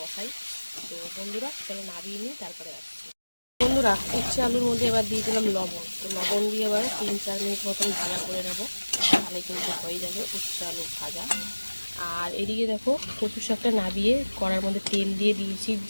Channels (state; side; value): inverted; both; correlation -1.00